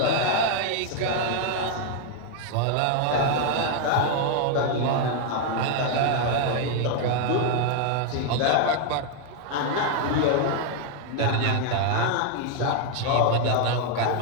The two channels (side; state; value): both; different; correlation 0.00